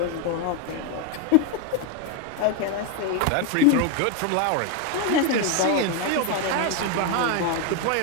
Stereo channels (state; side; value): different; both; correlation 0.01